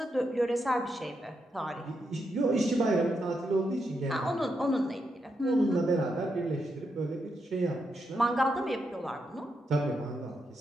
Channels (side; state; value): both; normal; correlation 0.83